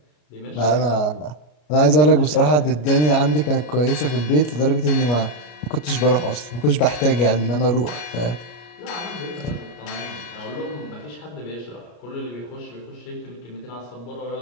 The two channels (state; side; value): late; right; 33 ms